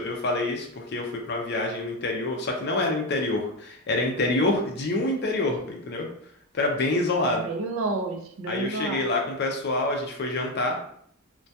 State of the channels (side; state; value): both; normal; correlation 0.10